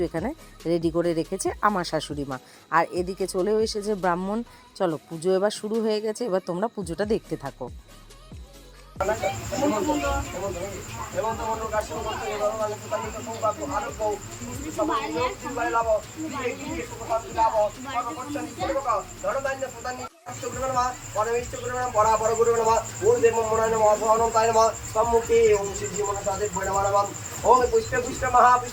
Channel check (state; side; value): identical; both; correlation 1.00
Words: এখানে রেডি করে রেখেছে আমার শাশুড়ি মা। আর এদিকে চলেও এসেছে ব্রাহ্মণ। চলো, পুজো এবার শুরু হয়ে গেছে, এবার তোমরা পুজোটা দেখতে থাকো। ओम पुष्प पुष्प